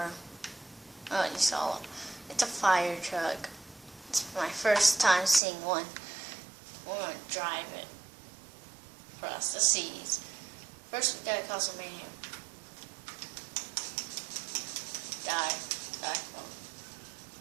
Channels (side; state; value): left; drops out; at 5.4 s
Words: Oh, you saw it. It's a fire truck. It's my first time seeing one. We're gonna drive it across the seas. First, we gotta cause some mayhem. Die. There, let's go.